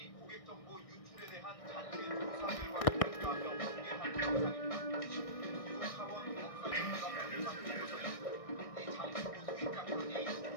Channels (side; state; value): right; late; 1.6 ms